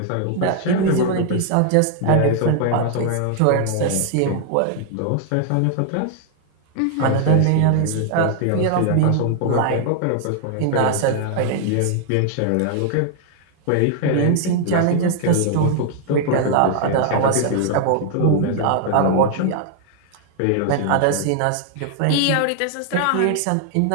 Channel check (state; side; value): different; both; correlation 0.00